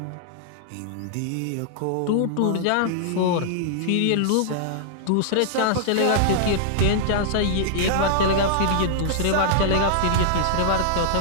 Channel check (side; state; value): both; different; correlation -0.01